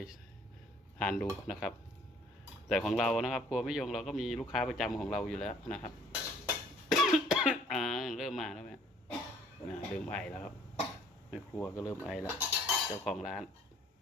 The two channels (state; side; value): normal; both; correlation 0.58